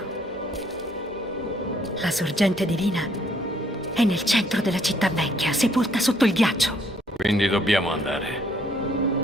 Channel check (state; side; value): normal; both; correlation 0.66